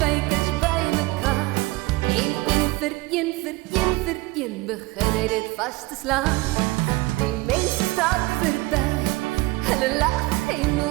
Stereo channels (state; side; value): quieter; left; 21.6 dB